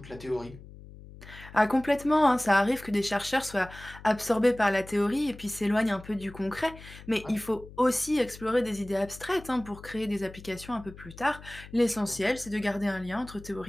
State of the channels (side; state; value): left; noise; hum, 17 dB below the sound